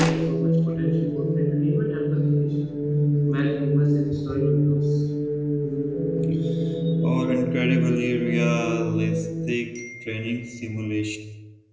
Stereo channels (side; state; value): both; identical; correlation 1.00